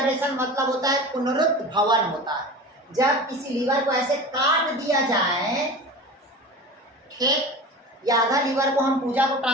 मतलब होता है पुनरुत्भवन होता है। जब किसी लीवर को ऐसे काट दिया जाए, ठीक, या आधा लीवर को हम पूजा को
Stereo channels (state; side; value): normal; both; correlation 0.33